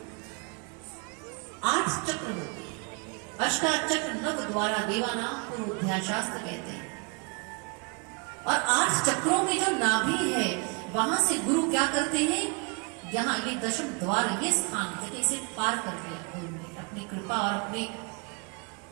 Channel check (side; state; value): left; quieter; 33.3 dB